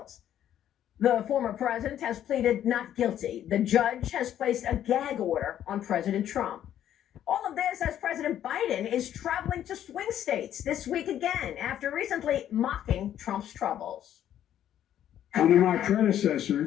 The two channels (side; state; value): right; quieter; 10.9 dB